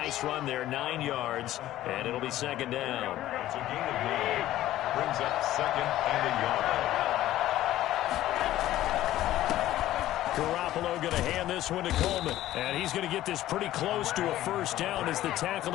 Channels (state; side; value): quieter; right; 14.2 dB